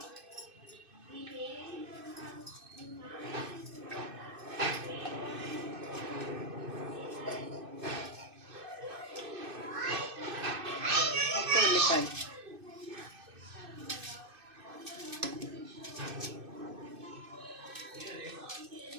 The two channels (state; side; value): late; left; 2.6 ms